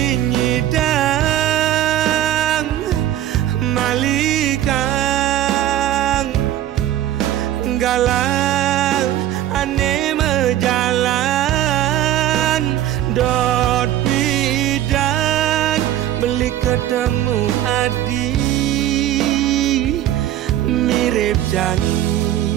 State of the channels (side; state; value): left; quieter; 12.6 dB